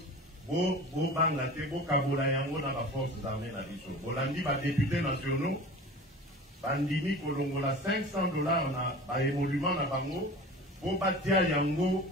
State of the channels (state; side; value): normal; both; correlation 0.38